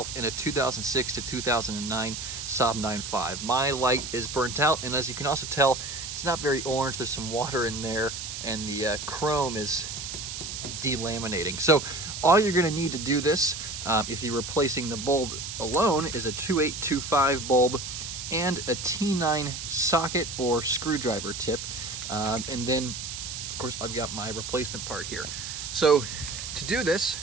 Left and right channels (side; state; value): right; noise; hiss, 7 dB below the sound